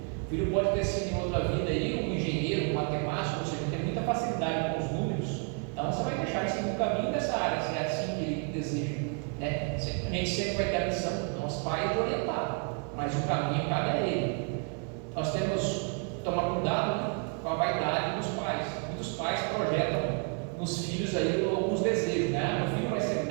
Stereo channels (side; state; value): left; quieter; 38.9 dB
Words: O filho pode ter sido em outra vida aí, um engenheiro, um matemático, ou seja, tem muita facilidade com os números. Então você vai deixar isso no caminho dessa área, se é assim que ele deseja. Né? A gente sempre vai ter a missão, nós pais, de orientar, mas o caminho cabe a ele. Nós temos que tomar cuidado, né, com a vaidade dos pais. Muitos pais projetam nos filhos aí alguns desejos, né? Meu filho vai ser